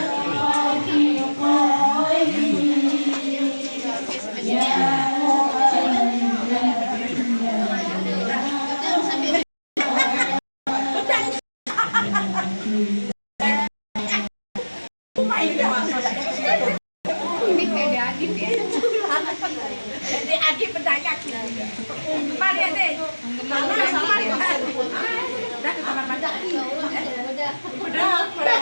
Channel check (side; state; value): both; inverted; correlation -1.00